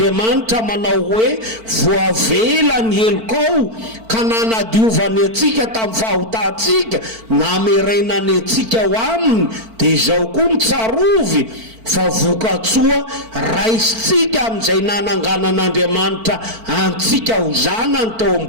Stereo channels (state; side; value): late; left; 4.5 ms